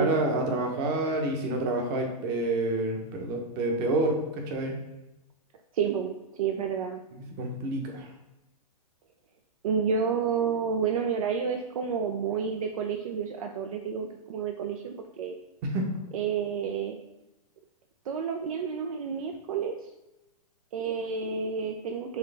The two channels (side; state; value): left; quieter; 3.9 dB